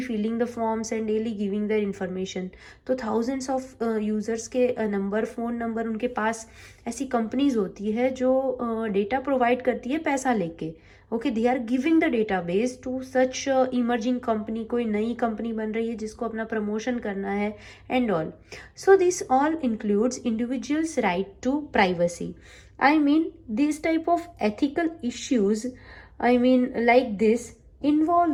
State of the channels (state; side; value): identical; both; correlation 1.00